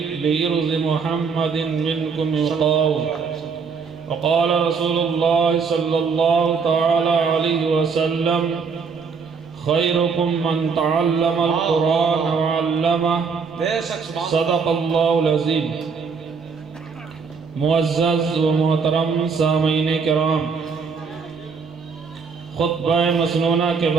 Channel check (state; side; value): quieter; left; 5.4 dB